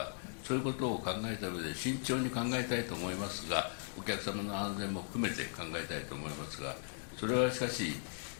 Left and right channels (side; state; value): right; silent; 52 dB below the other